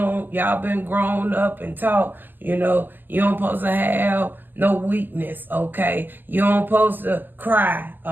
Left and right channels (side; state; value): left; late; 0.089 ms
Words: been grown up and taught, you know, you don't supposed to have no weakness, okay? You don't supposed to cry,